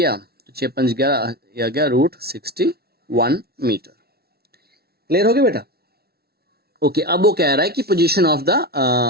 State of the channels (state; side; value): late; left; 0.45 ms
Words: तो 6 5 11, यह गया √61 मीटर। क्लियर हो गया बेटा? ओके, अब वो कह रहा है कि position of the